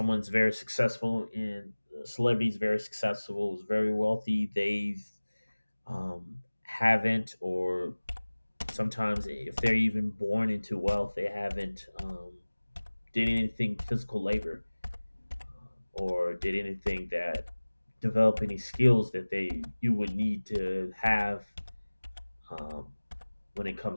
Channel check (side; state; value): both; inverted; correlation -1.00